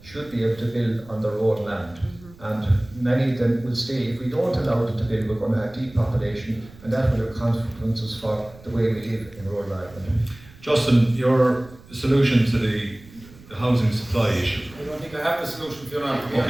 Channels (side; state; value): right; noise; rumble, 22 dB below the sound